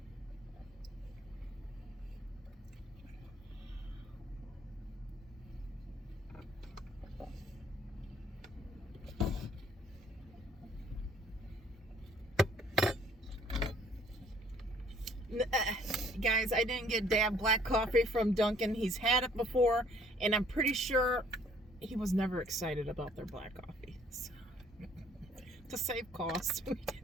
Guys, I didn't get Dad black coffee from Dunkin'. He's had it before, and I'm pretty sure he was never excited about their black coffee. So, to save costs, we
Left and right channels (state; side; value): normal; both; correlation 0.59